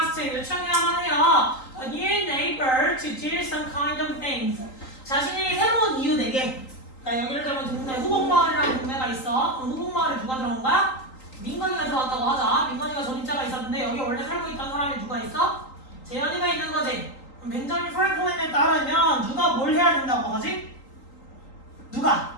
요청해야만 해요. A new neighbor to do some kind of things. 자신이 새로운 이웃에게. 그러니까 여기를 들면 동네 후곡마을이라는 동네가 있어. 그럼 후곡마을에 누가 들어온 거야? 민건이가 들어왔다고 하자. 민건이가 전입자가 있었는데 여기 원래 살고 있던 사람이 누가 있어? 재현이가 있는 거지. 벤자민 프랭클린에 따르면 누가 뭘 해야 된다고 하지? 누가?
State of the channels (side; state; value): right; late; 3.8 ms